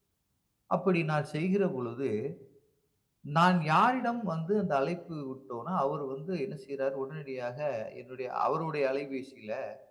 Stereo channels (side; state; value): both; identical; correlation 1.00